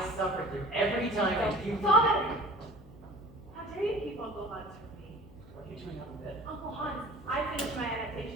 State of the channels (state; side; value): noise; left; hum, 21 dB below the sound